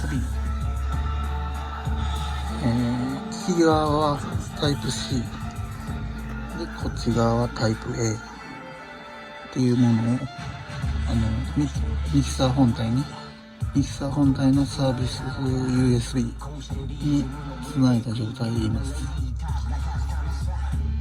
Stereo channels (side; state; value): both; identical; correlation 1.00